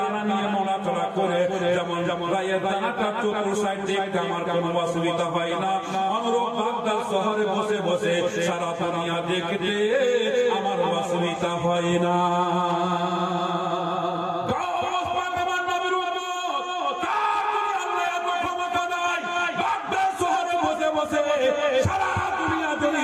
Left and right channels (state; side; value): identical; both; correlation 1.00